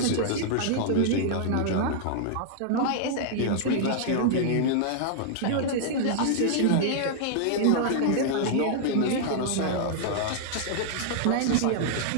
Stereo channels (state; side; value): different; both; correlation -0.01